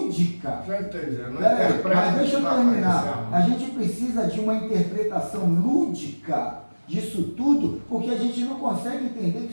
Já entendi, não mas deixa eu terminar. A gente precisa de uma interpretação lúdica disso tudo, porque a gente não consegue entender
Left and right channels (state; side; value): inverted; both; correlation -1.00